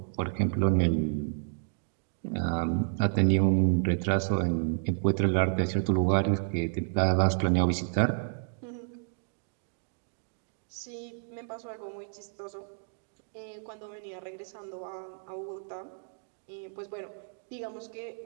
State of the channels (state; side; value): silent; left; digital silence